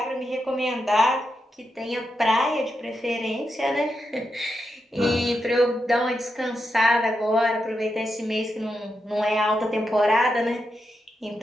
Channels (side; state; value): both; normal; correlation 0.86